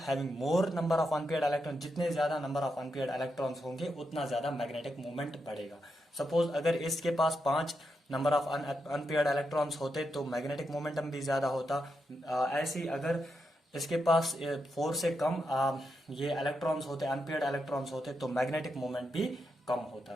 more number of unpaired electron, जितने ज्यादा नंबर ऑफ अनपेयर्ड इलेक्ट्रॉन्स होंगे उतना ज्यादा मैग्नेटिक मोमेंट बढ़ेगा। सपोज अगर इसके पास 5 नंबर ऑफ अनपेयर्ड इलेक्ट्रॉन्स होते तो मैग्नेटिक मोमेंटम भी ज्यादा होता। ऐसे ही अगर इसके पास 4 से कम ये इलेक्ट्रॉन्स होते, अनपेयर्ड इलेक्ट्रॉन्स होते, तो मैग्नेटिक मोमेंट भी कम होता।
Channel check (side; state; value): both; normal; correlation 0.84